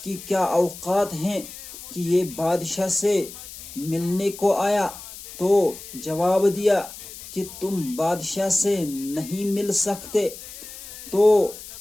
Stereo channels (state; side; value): noise; left; hiss, 14 dB below the sound